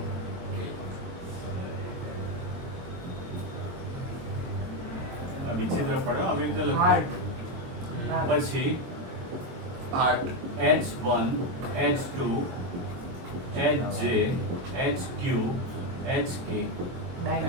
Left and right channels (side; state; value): left; late; 23 ms